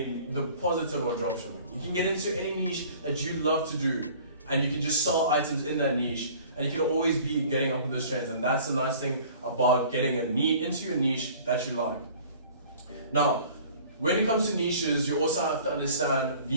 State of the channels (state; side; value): inverted; both; correlation -0.49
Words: positive of dropshipping. You can get into any niche that you love to do, and you can just sell items in that niche, and you can always be getting up with those trends. And that's the nice thing about getting into your niche that you like. Now, when it comes to niches, you also have to understand